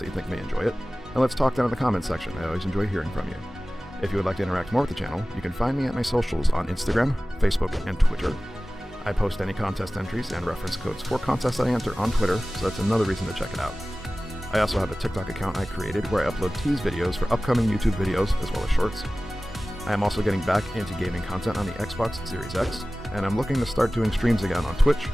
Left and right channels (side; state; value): both; normal; correlation 0.97